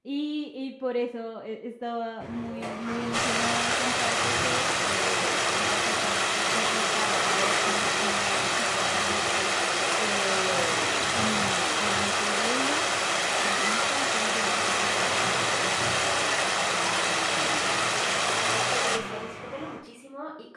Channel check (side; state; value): both; identical; correlation 1.00